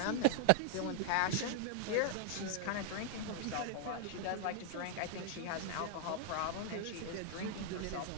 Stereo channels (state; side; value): different; both; correlation 0.00